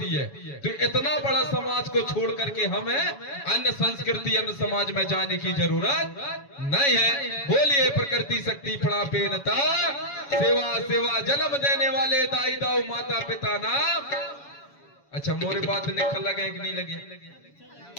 है। तो इतना बड़ा समाज को छोड़ करके हमें अन्य संस्कृति अन्य समाज में जाने की जरूरत नहीं है। बोलिए प्रकृति शक्ति फड़ा पेनता, सेवा सेवा जन्म देने वाले दाई दाऊ माता पिता नाम। अच्छा, मोरे बात निकल लगे कि नहीं लगे?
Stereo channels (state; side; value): late; right; 7.1 ms